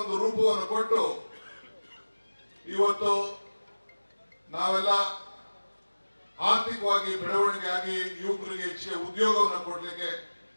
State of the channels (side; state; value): both; inverted; correlation -1.00